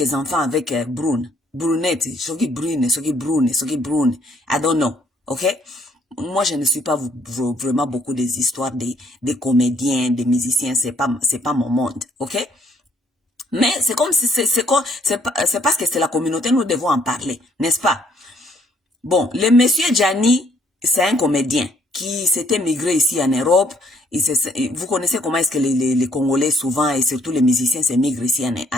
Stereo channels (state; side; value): normal; both; correlation 0.66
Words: enfants avec Brunette, soki Brune, I don't know, okay? Moi, je ne suis pas vraiment beaucoup des histoires des comédiens, des musiciens, c'est pas mon monde, ok? Mais c'est comme si c'est parce que c'est la communauté, nous devons en parler, n'est-ce pas? Bon, le monsieur Gianni, c'est un comédien qui s'était migré ici en Europe. Vous connaissez comment est-ce que les Congolais souvent, et surtout les musiciens, se migrent ici